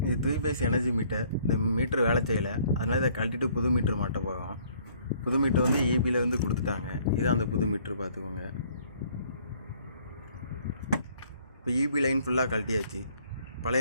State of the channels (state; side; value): inverted; both; correlation -0.60